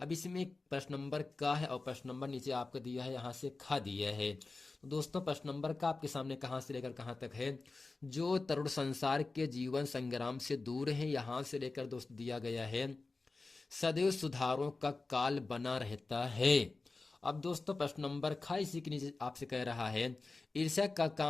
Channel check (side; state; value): right; quieter; 3.6 dB